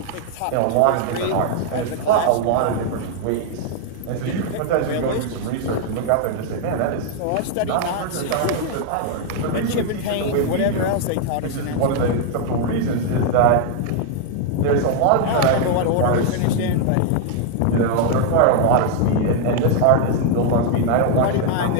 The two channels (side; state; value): both; different; correlation 0.00